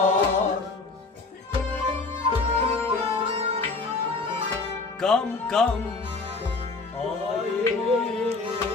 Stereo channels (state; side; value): quieter; right; 3.8 dB